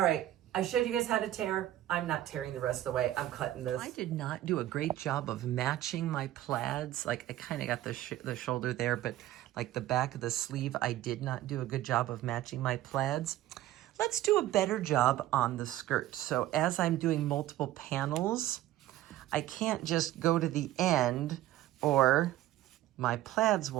right, I showed you guys how to tear. I'm not tearing the rest of the way. I'm cutting this. I did not do a great job of matching my plaids. Like, I kind of got the shoulder there, but like the back of the sleeve, I did not do a good job of matching my plaids. Let's do a better job on the skirt. So as I'm doing multiple panels, I can't just go to the end or my plaids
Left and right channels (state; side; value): quieter; left; 14.2 dB